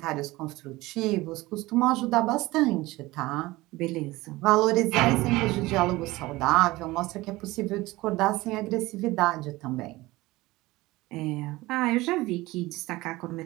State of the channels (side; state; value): left; quieter; 19.7 dB